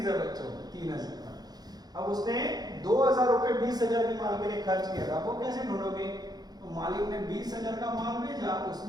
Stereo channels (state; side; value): late; left; 0.19 ms